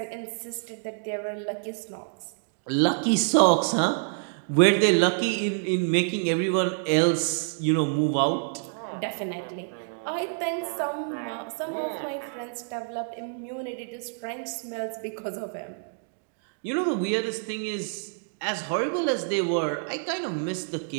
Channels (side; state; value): left; silent; digital silence